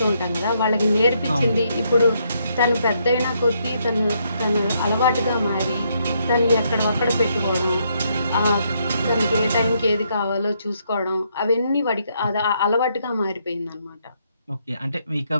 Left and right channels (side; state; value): both; inverted; correlation -0.74